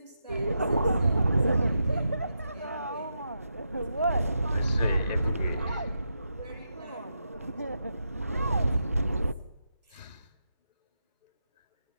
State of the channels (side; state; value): both; inverted; correlation -0.85